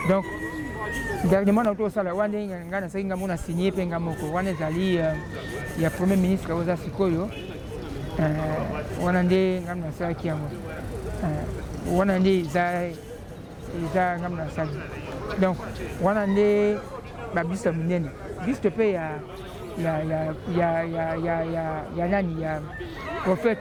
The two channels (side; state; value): both; identical; correlation 1.00